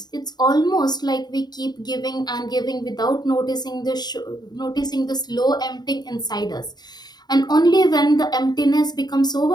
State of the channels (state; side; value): late; right; 0.20 ms